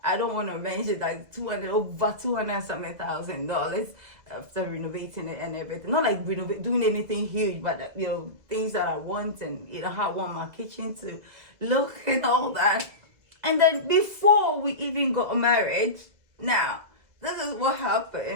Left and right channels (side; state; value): left; late; 2.0 ms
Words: I don't want to mention that over 200 and something $1,000 after renovating it and everything. Not like doing anything huge, but things that I want and how I want my kitchen to look and all that. And then before we even got married, now, this is what